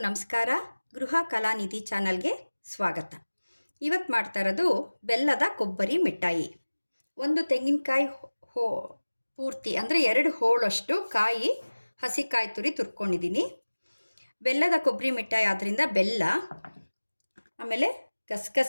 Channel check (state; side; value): inverted; both; correlation -1.00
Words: ನಮಸ್ಕಾರ. ಗೃಹ ಕಲಾನಿಧಿ ಚಾನಲ್ಗೆ ಸ್ವಾಗತ. ಇವತ್ತು ಮಾಡ್ತಾ ಇರೋದು ಬೆಲ್ಲದ ಕೊಬ್ಬರಿ ಮಿಠಾಯಿ. ಒಂದು ತೆಂಗಿನಕಾಯಿ ಪೂರ್ತಿ ಅಂದರೆ 2 ಹೋಳಷ್ಟು ಕಾಯಿ ಹಸಿಕಾಯಿ ತುರಿ ತುರ್ಕೊಂಡಿದ್ದೀನಿ. ಬೆಲ್ಲದ ಕೊಬ್ಬರಿ ಮಿಠಾಯಿ ಆದ್ದರಿಂದ ಬೆಲ್ಲ, ಆಮೇಲೆ